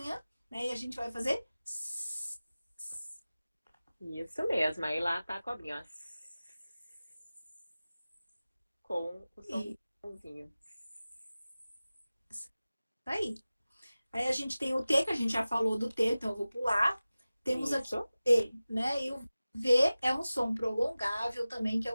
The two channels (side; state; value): both; inverted; correlation -0.97